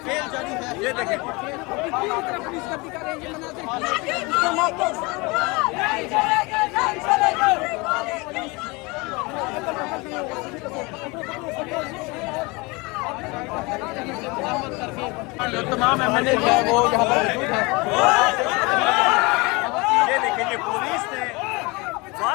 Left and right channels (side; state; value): right; quieter; 26.1 dB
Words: ये देखें जो तमाम MNA है वो यहाँ पर मौजूद है। ये देखें ये पुलिस ने